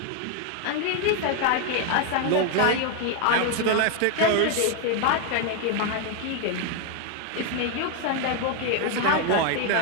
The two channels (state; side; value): different; both; correlation 0.01